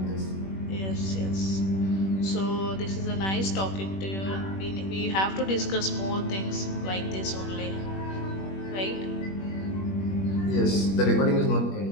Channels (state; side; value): late; right; 21 ms